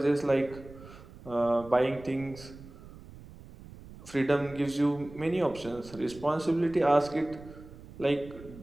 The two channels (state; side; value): noise; right; rumble, 18 dB below the sound